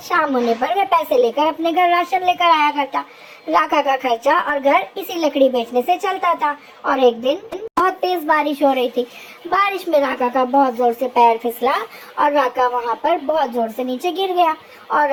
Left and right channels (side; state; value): both; identical; correlation 1.00